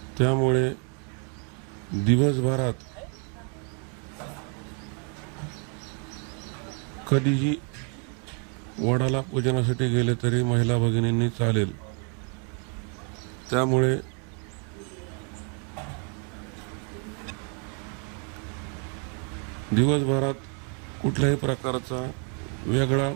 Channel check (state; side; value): quieter; left; 39.0 dB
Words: त्यामुळे दिवसभरात कधीही वडाला पूजनासाठी गेले तरी महिला भगिनींनी चालेल। त्यामुळे दिवसभरात कुठल्याही प्रकारचा वेगळा